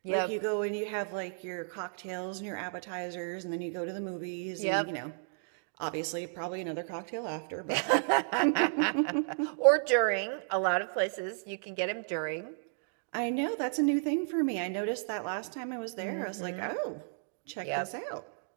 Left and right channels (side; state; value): left; silent; digital silence